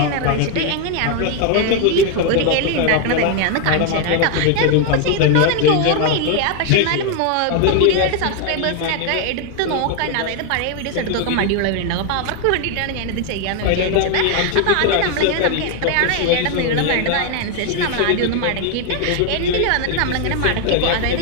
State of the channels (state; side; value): different; both; correlation 0.01